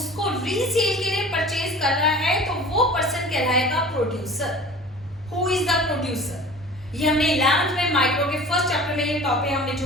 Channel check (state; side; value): normal; both; correlation 0.41